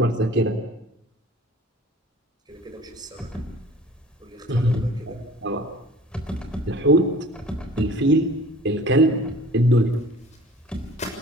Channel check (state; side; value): normal; both; correlation 0.46